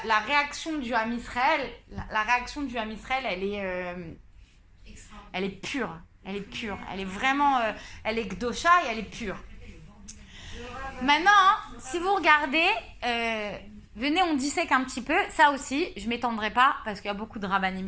réaction du Ham Israël, la réaction du Ham Israël, elle est pure. Elle est pure. Elle est vraiment, elle est Gdosha et elle est pure. Maintenant, si vous regardez, venez, on dissèque un petit peu. Ça aussi, je ne m'étendrai pas parce qu'il y a beaucoup de rabbanim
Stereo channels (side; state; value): both; identical; correlation 1.00